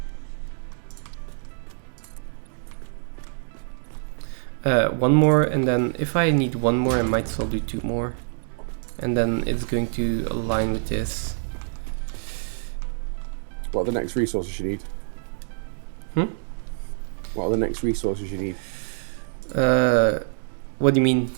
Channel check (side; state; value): left; silent; digital silence